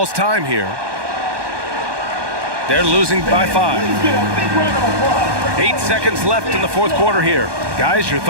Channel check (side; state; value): left; late; 1.2 ms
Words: time here. They're losing by 5. 8 seconds left in the 4th quarter here. Guys, your